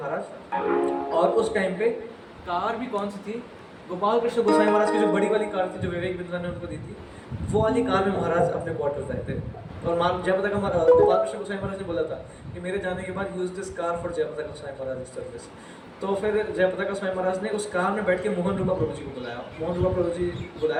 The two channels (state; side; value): identical; both; correlation 1.00